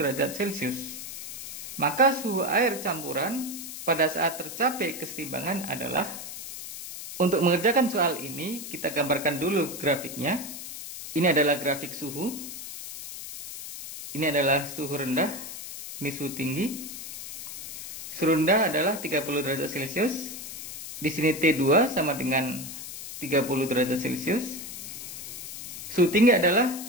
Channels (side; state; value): left; noise; hiss, 9 dB below the sound